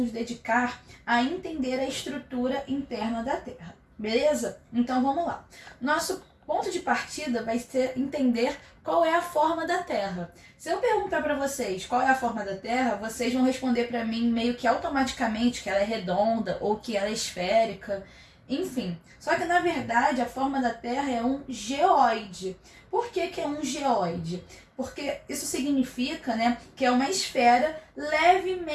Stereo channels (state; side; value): identical; both; correlation 1.00